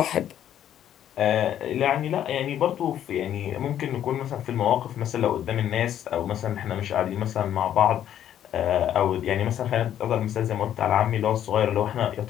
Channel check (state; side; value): quieter; right; 10.7 dB